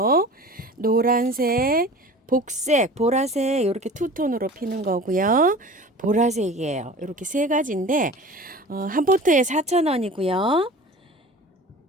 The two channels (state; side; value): normal; both; correlation 0.39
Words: 노란색, 복색, 보라색 이렇게 투톤으로 피는 거고요. 보라색이에요. 이렇게 세 가지인데 한 포트에 4,000원이고요.